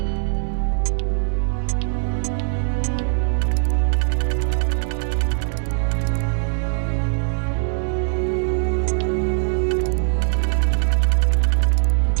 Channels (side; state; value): left; silent; 65 dB below the other